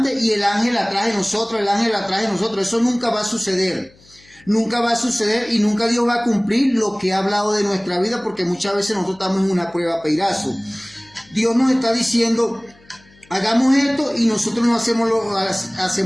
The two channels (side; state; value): left; noise; hum, 29 dB below the sound